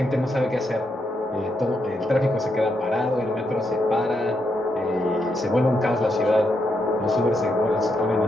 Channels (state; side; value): normal; both; correlation 0.81